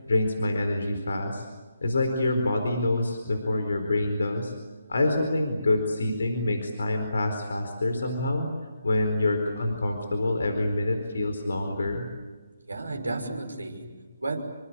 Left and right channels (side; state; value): both; inverted; correlation -0.84